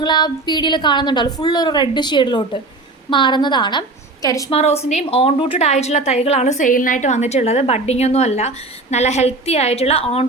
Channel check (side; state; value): left; quieter; 3.1 dB